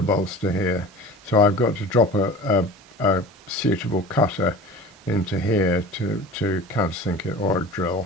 here. So I've got to drop a suitable cutter into here to countersink it, or a drill.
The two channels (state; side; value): normal; both; correlation 0.37